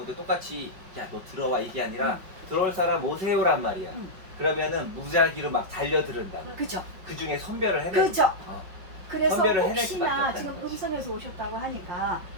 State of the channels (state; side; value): late; left; 5.3 ms